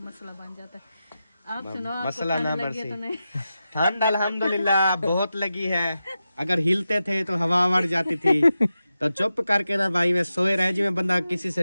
मसला बन जाता है। आप सुनो मसला ना लगी तो नहीं? ठंड अल्हम्दुलिल्लाह बहुत लगी है। अगर हिलते थे तो हवा मर जाती थी, तो चुप करके ना भाई में सोए रहे जिसमें बंदा किसी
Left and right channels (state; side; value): inverted; both; correlation -0.91